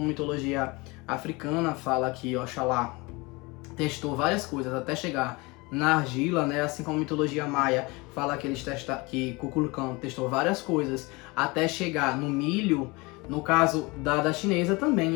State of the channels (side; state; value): right; quieter; 25.2 dB